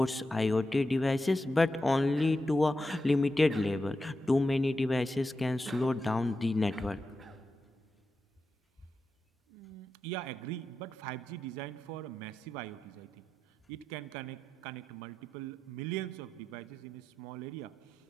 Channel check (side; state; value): both; normal; correlation 0.89